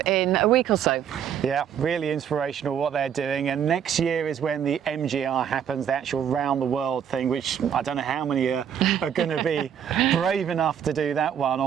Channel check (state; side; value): quieter; left; 8.7 dB